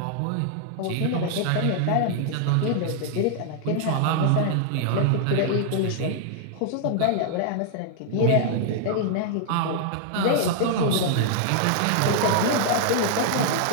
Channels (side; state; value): both; different; correlation -0.01